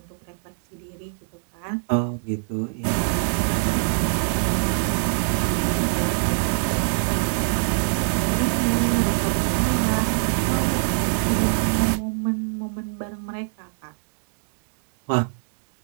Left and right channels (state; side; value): silent; left; digital silence